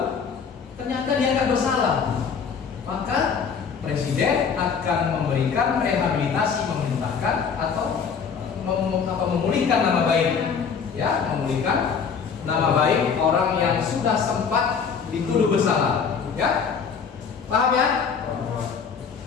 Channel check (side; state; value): right; quieter; 6.3 dB